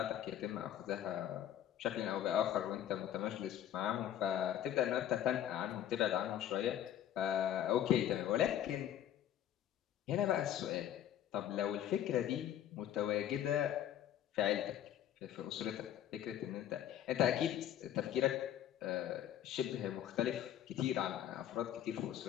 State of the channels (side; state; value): right; quieter; 11.0 dB